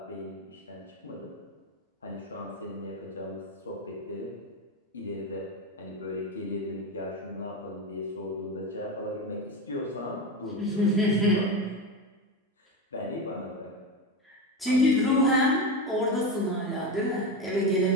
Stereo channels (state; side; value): normal; both; correlation 0.18